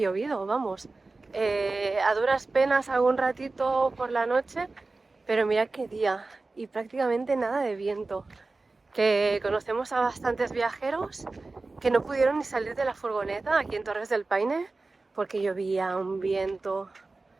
vamos. A duras penas algún ratito por la noche, pero mirad qué día y prácticamente nada de viento. Que conocemos a bastantes viajeros que no pudieron ni salir de la furgoneta aquí en Torres del Paine porque llovía, un viento.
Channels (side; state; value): left; quieter; 3.5 dB